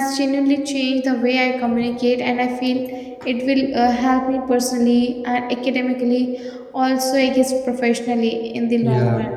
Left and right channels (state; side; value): identical; both; correlation 1.00